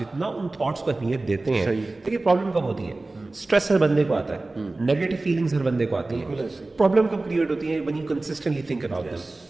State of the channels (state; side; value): quieter; left; 3.1 dB